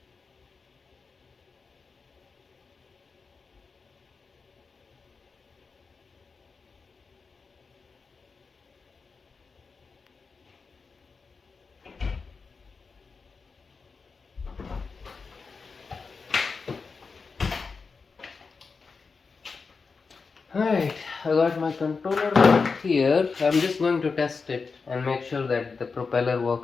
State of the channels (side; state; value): right; quieter; 4.8 dB